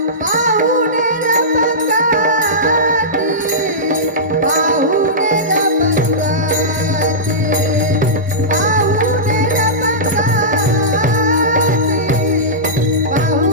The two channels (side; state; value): both; normal; correlation -0.16